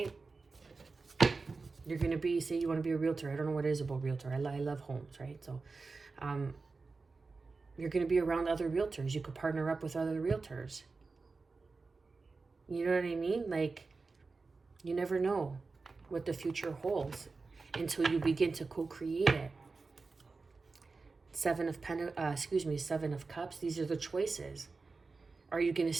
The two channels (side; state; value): left; quieter; 4.1 dB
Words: You're going to be, say you want to be a realtor. I don't know what it is about realtor. I love homes, right? So you're going to be around other realtors. You could partner up with other realtors. You know what I mean? Like, you never know what the future holds until you begin to co-create it. 7 of Cups. These are the choices. Are you going to